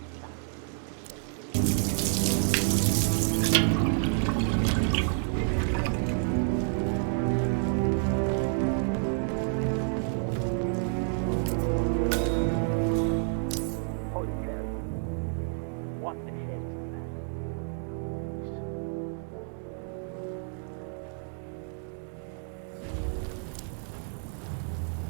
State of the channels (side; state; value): left; silent; 58 dB below the other